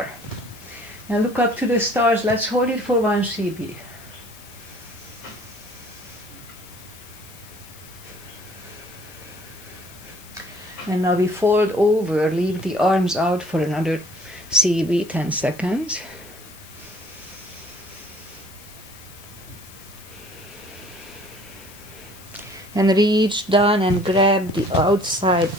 Now look up to the stars. Let's hold it for 1 CB. And now we fold over, leave the arms out for another CB, 10 seconds. And reach down and grab the outside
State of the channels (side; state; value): left; noise; hiss, 20 dB below the sound